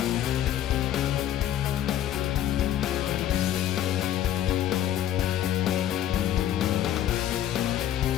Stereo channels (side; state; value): right; quieter; 11.6 dB